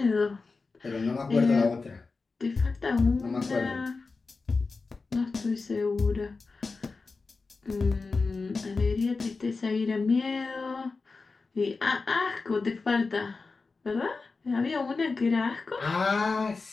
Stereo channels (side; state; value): right; quieter; 4.1 dB